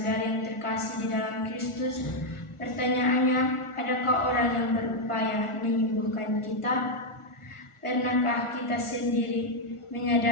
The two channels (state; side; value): late; right; 1.4 ms